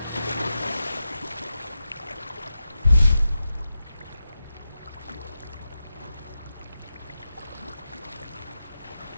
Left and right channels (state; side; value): inverted; both; correlation -0.90